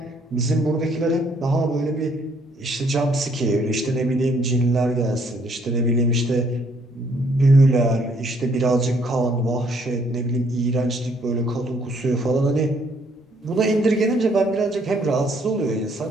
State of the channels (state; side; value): normal; both; correlation 0.66